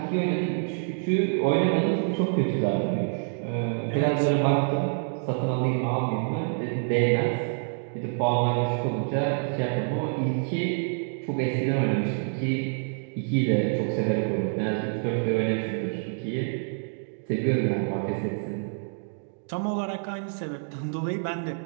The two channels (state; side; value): silent; left; digital silence